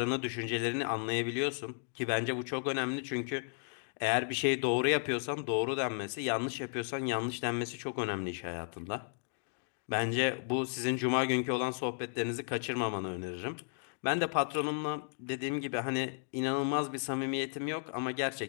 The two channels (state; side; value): silent; right; digital silence